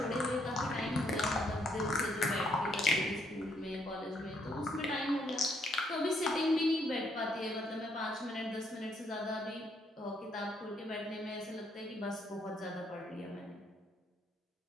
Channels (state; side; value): normal; both; correlation 0.72